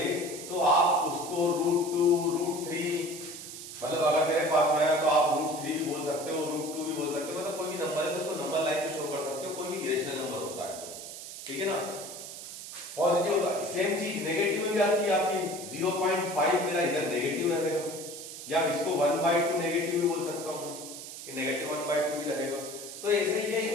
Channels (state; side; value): noise; right; hiss, 11 dB below the sound